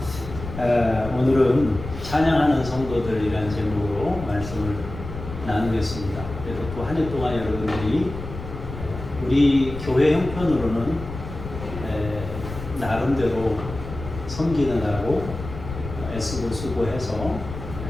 오늘은 찬양하는 성도들이라는 제목으로 말씀을 나누겠습니다. 그래서 또 한 해 동안 여러분들이 우리 교회 형편으로는 나름대로 섬기느라고 애쓰고 수고해서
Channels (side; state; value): left; noise; rumble, 10 dB below the sound